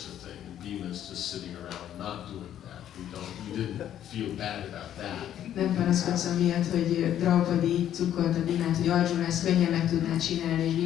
a thing, and Bhima is just sitting around not doing that. You didn't feel bad about that. Nem panaszkodsz amiatt, hogy Draupadi cukkolta Bhimát, hogy Arjuna ezt könnyen meg tudná csinálni, és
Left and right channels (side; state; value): right; quieter; 10.9 dB